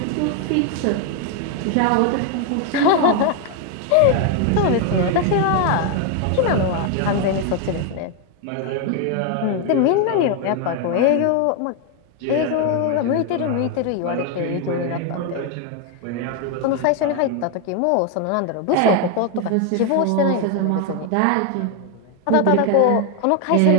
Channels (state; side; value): different; both; correlation 0.01